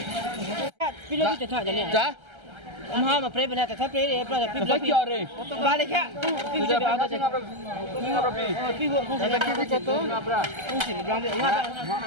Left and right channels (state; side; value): late; left; 1.3 ms